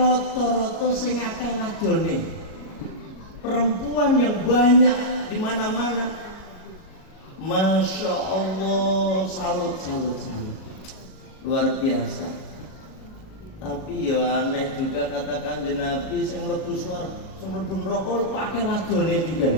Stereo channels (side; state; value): right; late; 37 ms